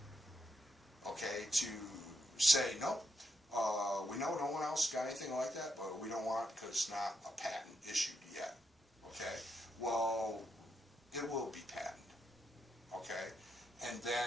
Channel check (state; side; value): normal; both; correlation 0.81